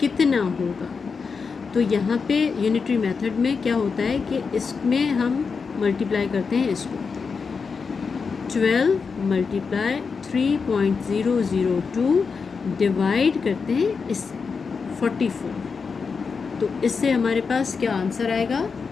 कितना होगा? तो यहाँ पे यूनिटरी मेथड में क्या होता है कि इसमें हम मल्टीप्लाई करते हैं इसको. 12 मल्टीप्लाई 3.002 डिवाइड करते हैं इससे 44. तो इससे हमारे पास क्या आंसर आएगा?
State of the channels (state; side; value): quieter; right; 5.3 dB